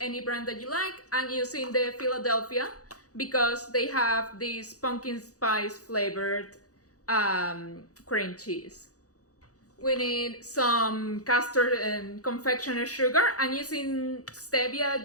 brand that you like. I'm using the Philadelphia because they have this pumpkin spice flavored cream cheese. We need some custard and confectioner sugar. I'm using stevia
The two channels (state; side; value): late; right; 0.67 ms